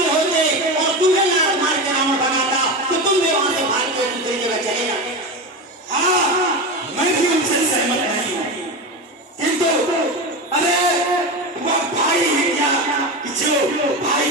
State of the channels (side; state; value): both; normal; correlation 0.21